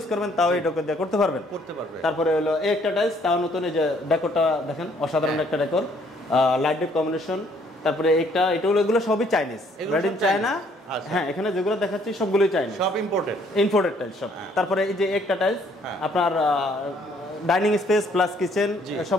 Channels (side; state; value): both; normal; correlation 0.64